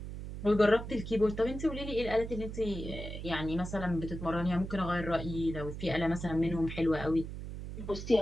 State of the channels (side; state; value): right; noise; hum, 8 dB below the sound